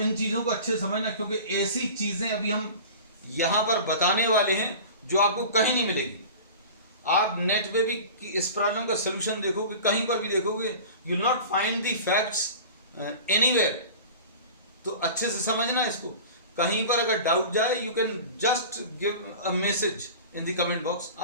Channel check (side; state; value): both; inverted; correlation -0.37